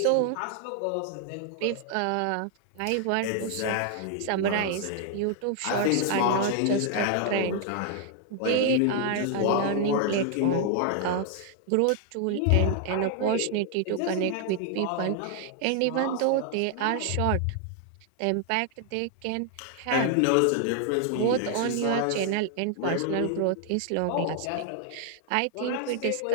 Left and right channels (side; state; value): both; different; correlation 0.00